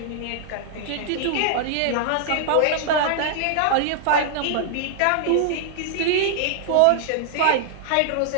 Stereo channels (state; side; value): different; both; correlation -0.01